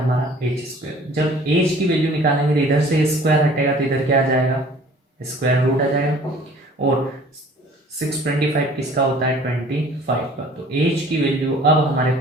एच स्क्वायर। जब एच की वैल्यू निकालेंगे तो इधर से स्क्वायर हटेगा, तो इधर क्या आ जाएगा, स्क्वायर रूट आ जाएगा। और 625 किसका होता है, 25 का, तो एच की वैल्यू अब हमारे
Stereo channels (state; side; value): normal; both; correlation 0.50